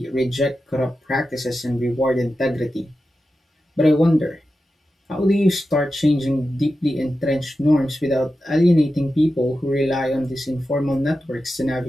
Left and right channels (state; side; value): normal; both; correlation 0.91